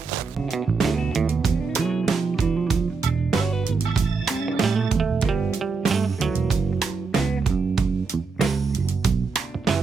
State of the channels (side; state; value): left; quieter; 4.6 dB